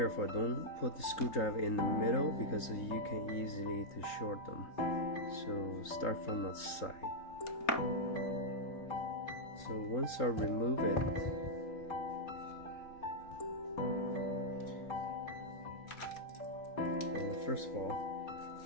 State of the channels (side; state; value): right; late; 3.8 ms